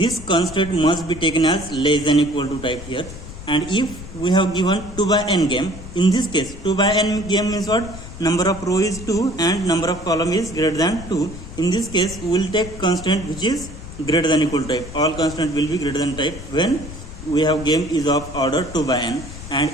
constant must be taken as less than equal to type here. And if we have given 2 by n game, in this case 2 by n game means what? Number of row is 2 and number of column is greater than 2. In this case we will take constant which is greater than equal to type. All constant will be greater than type when we have game is of order 2 by n.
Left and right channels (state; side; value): noise; left; rumble, 13 dB below the sound